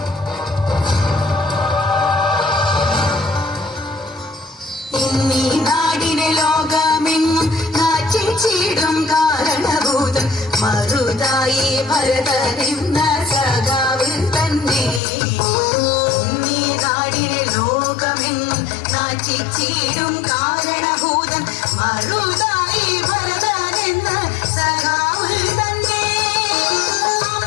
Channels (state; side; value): drops out; right; at 15.0 s